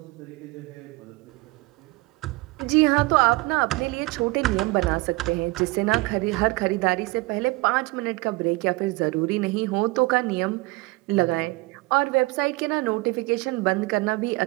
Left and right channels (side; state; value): left; quieter; 23.5 dB